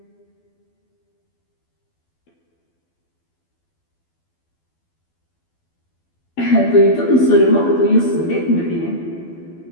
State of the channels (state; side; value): late; right; 12 ms